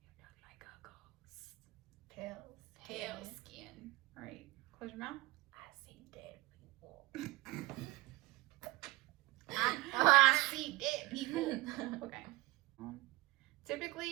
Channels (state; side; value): quieter; left; 21.3 dB